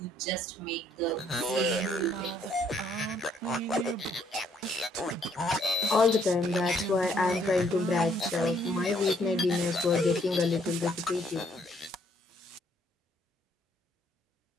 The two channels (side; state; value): both; normal; correlation 0.67